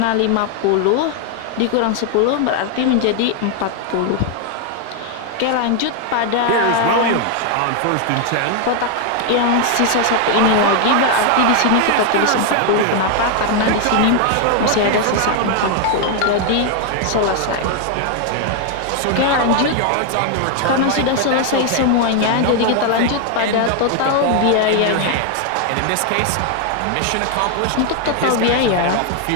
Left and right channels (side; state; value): both; different; correlation 0.00